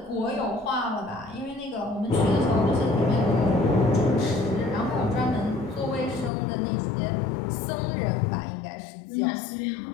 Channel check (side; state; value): right; drops out; at 6.3 s